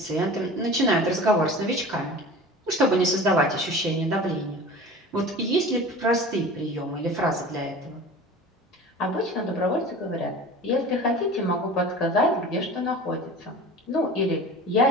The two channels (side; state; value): both; normal; correlation 0.38